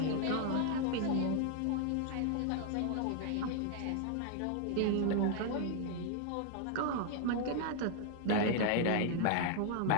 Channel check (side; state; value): both; different; correlation 0.00